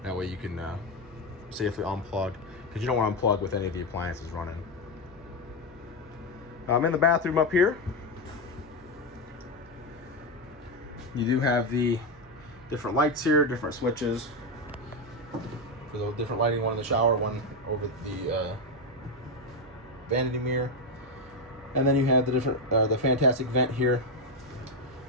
That way you can safely unplug, because you don't want to unplug with any of the appliances running. In the bathroom up here, you do have the different lights here, different switches for the different lighting. One in the shower, one over the vanity mirror, and then you have the different the fantastic vent here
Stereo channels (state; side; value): noise; right; hum, 24 dB below the sound